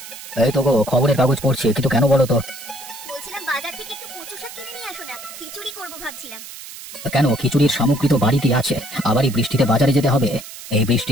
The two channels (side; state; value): right; noise; hiss, 13 dB below the sound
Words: এই তো গো খবরের কাগজ পড়ছি, কিন্তু কেন বলো তো? বলছিলাম বাজার থেকে একটু কচু শাক কিনে নিয়ে আসো না, খিচুড়ি করবো ভাবছিলাম। কেন, খিচুড়ির সামগ্রী তো বাড়িতে আছে, আবার এই বৃষ্টিতে বাজারে যেতে হবে? এই